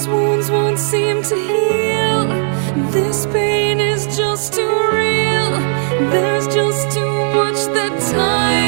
wounds won't seem to heal. This pain is just too real. There's just too much that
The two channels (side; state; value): left; silent; 69 dB below the other